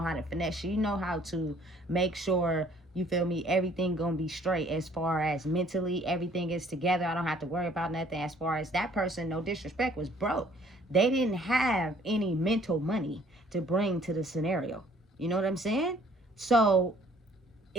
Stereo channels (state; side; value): normal; both; correlation 0.59